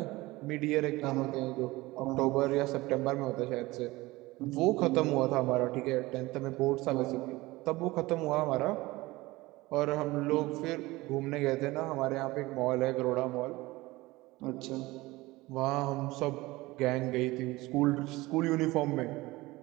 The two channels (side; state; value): left; quieter; 20.2 dB